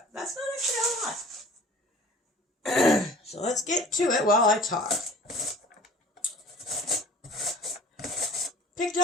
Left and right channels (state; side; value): normal; both; correlation 0.47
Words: That's not actually a lot. So let's get to it while I talk. Picked